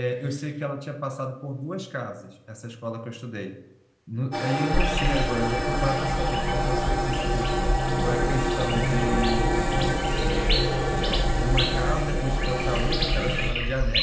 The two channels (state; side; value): identical; both; correlation 1.00